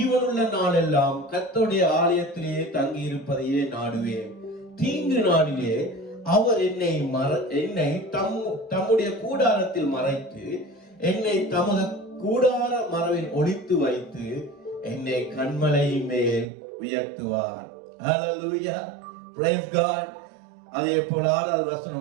நாளெல்லாம் கர்த்தருடைய ஆலயத்திலே தங்கி இருப்பதையே நாடுவேன். தீங்கு நாளிலே அவர் என்னை தம்முடைய கூடாரத்தில் மறைத்து என்னை தமது கூடார மரவில் ஒளித்து வைத்து என்னை கண்மலை மேல் உயர்த்துவார். ஹல்லேலூயா, பிரைஸ் காட். அதே போல 6வது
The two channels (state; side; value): drops out; left; at 16.4 s